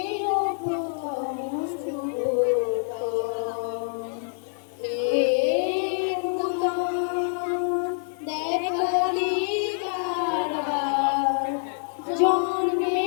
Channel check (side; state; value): right; silent; digital silence